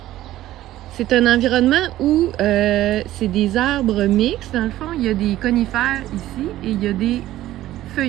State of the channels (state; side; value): quieter; left; 14.5 dB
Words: C'est un environnement où c'est des arbres mixtes. Dans le fond, il y a des conifères ici et il y a des